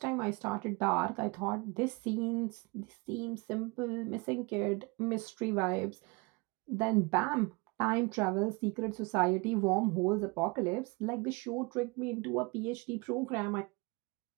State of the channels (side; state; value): left; quieter; 27.4 dB